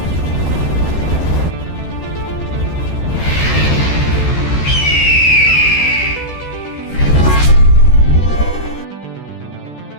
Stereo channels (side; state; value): right; late; 13 ms